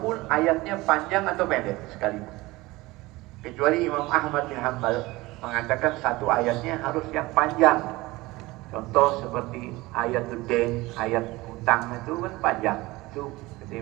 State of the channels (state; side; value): quieter; left; 20.5 dB